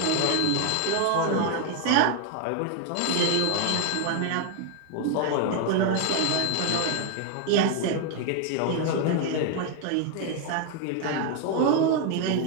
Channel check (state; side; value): different; both; correlation 0.00